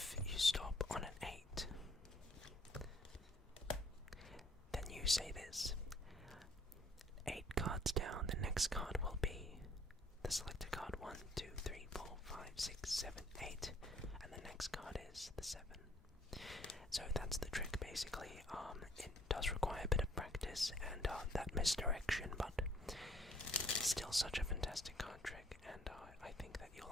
you stop on an 8, then you say this. 8 cards down, the next card will be the selected card 1, 2, 3, 4, 5, 6, 7, 8, and the next card is the 7. So that's the trick basically. It does require a bit of practice and that misdirection, but it's still such a fantastic card trick, and I think that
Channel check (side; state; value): both; normal; correlation 0.61